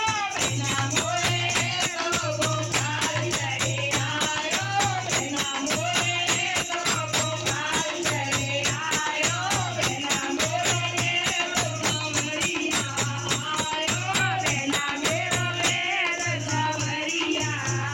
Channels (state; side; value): identical; both; correlation 1.00